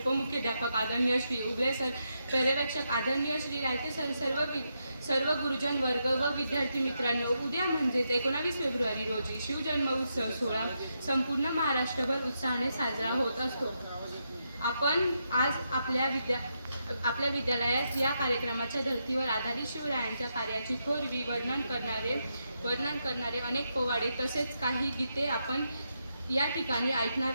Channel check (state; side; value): inverted; both; correlation -0.83